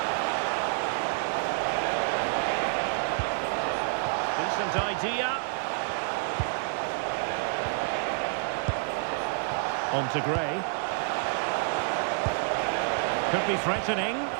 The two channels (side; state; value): left; silent; 59 dB below the other